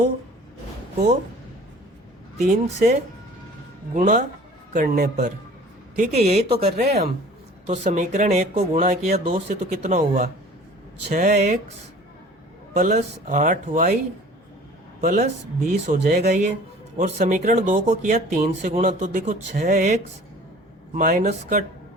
को 3 से गुणा करने पर। ठीक है, यही तो कर रहे हैं हम। तो समीकरण 1 को गुणा किया 2 से तो कितना हुआ 6x प्लस 8y प्लस 20 हो जाएगा ये। और समीकरण 2 को किया 3 से गुणा तो देखो 6x माइनस का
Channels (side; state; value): both; normal; correlation 0.47